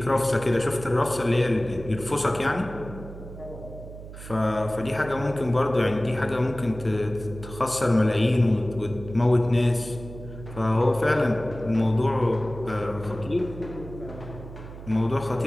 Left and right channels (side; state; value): right; noise; hum, 13 dB below the sound